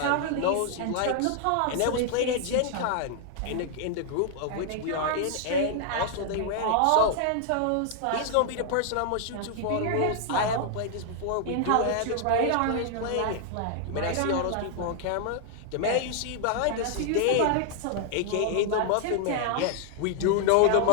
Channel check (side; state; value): both; different; correlation 0.00